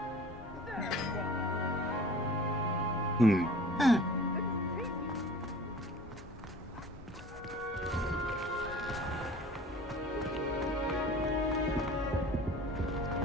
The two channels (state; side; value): normal; both; correlation 0.44